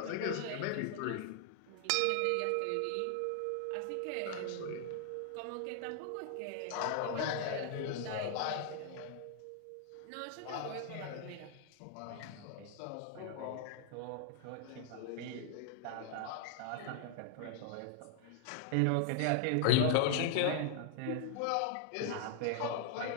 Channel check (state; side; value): different; both; correlation 0.00